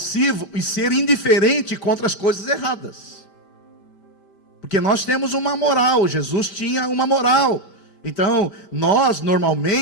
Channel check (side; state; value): right; late; 5.1 ms